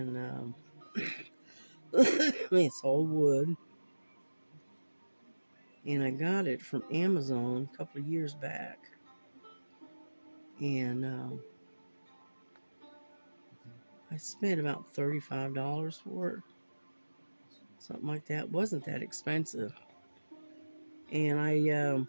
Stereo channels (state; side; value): inverted; both; correlation -1.00